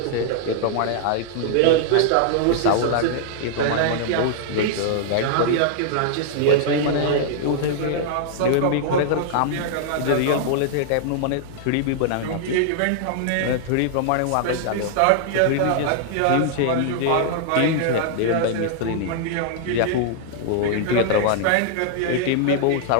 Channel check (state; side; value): different; both; correlation -0.01